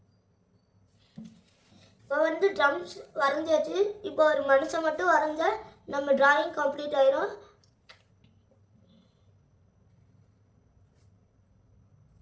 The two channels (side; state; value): both; identical; correlation 1.00